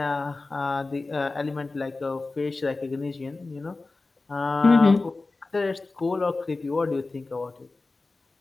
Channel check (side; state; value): right; quieter; 3.5 dB